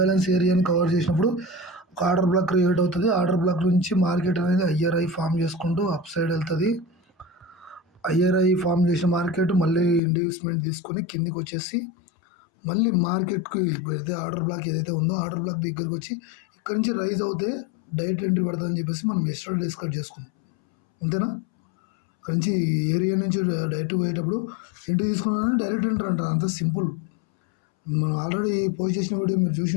ఏరియాని కవర్ చేసినప్పుడు ఒక ఆర్డర్ బ్లాక్ క్రియేట్ అవుతుంది. ఆర్డర్ బ్లాక్ నుంచి మార్కెట్ అనేది ఐఆర్ఐ ఫామ్ చేసుకుంటూ అప్ సైడ్ వెళ్తుంది. ఐఆర్ఐ ఫామ్ చేసిన మార్కెట్ మళ్ళీ ఇండ్యూస్మెంట్ తీసుకొని కిందికి వచ్చేసి మళ్ళీ మార్కెట్కి ఏదైతే ఆర్డర్ బ్లాక్ ఏదైతే ఉందో ఆర్డర్ బ్లాక్ దగ్గరికి వచ్చి ఇక్కడ నుంచి రైజ్ అవుతే డైరెక్ట్ ఎంట్రీ పడుతుందని చెప్పేసి మనం ఎక్స్ట్రా డిస్కస్ చేసుకున్నాం. అంతేనా? ఇక్కడ నుంచి ఏరియా నుంచి డైరెక్ట్ పోయేటప్పుడు ఎంట్రీ తీసుకున్నానని డైరెక్ట్ ఎంట్రీ అంటారు. అంత సింపుల్. మనం ఆల్రెడీ పోస్ట్ చేసిన వీడియో మీరు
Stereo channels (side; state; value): right; drops out; at 10.0 s